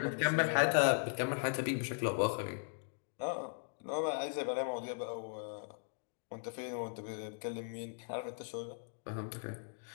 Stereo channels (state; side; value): silent; right; digital silence